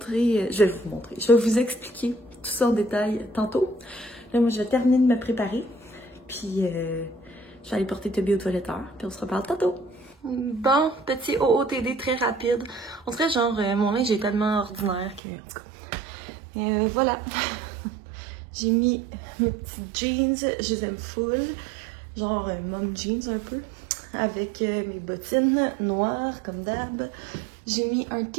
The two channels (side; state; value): left; drops out; at 15.2 s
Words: Je vais vous expliquer tout ça en détail tantôt. Là, moi, je vais terminer de me préparer. Puis, je vais aller porter Toby au toiletteur. Puis, on se reparle tantôt. Bon, petit OOTD très rapide. On dirait genre, mon linge est tellement ordinaire que... En tout cas. Voilà. J'ai mis mes petits jeans. Je les aime full. Genre, mom jeans un peu. Avec mes bottines noires, comme d'hab. J'ai mis un